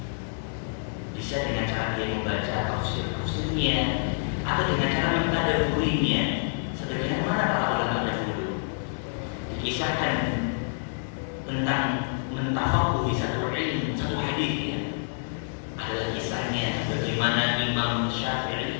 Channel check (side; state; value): right; silent; digital silence